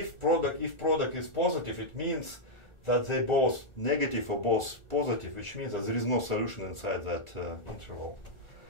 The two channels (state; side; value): late; right; 1.4 ms